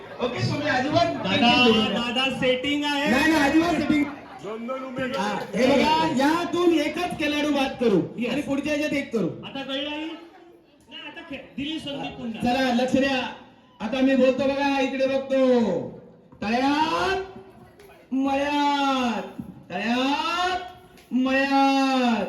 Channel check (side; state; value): both; identical; correlation 1.00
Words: ओके, तुम्ही अजिबात दादा सेटिंग आहे. नाही, अजिबात सेटिंग. हे बघा, यातून एकच खेळाडू बाद करू आणि पुढच्या ह्याच्यात एक करू. आता कळलं नाही. आता दिली संधी पुन्हा. चला लक्ष द्या. आता मी बोलतो बघा, इकडे बघतो. तळ्यात मळ्यात